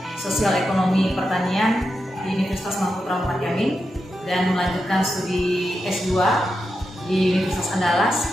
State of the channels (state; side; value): normal; both; correlation 0.87